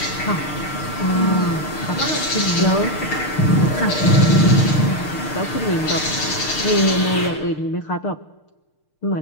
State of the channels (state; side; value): late; right; 6.6 ms